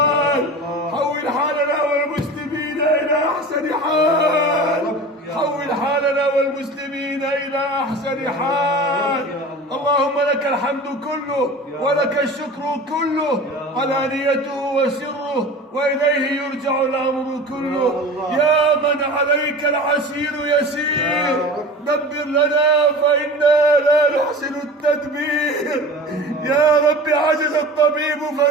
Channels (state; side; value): normal; both; correlation 0.36